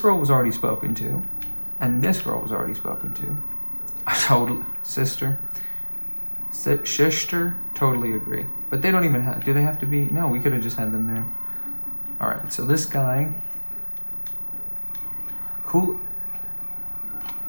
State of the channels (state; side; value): inverted; both; correlation -1.00